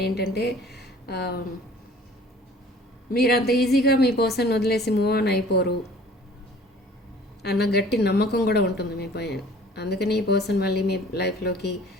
ఏంటంటే మీరు అంత ఈజీగా మీ పర్సన్ వదిలేసి మూవ్ ఆన్ అయిపోరు అన్న గట్టి నమ్మకం కూడా ఉంటుంది మీ పైన. అందుకని ఈ పర్సన్ మళ్ళీ మీ లైఫ్లోకి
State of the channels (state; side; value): normal; both; correlation 0.50